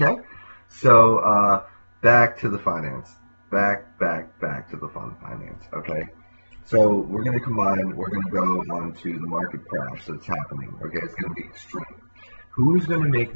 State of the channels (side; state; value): both; inverted; correlation -1.00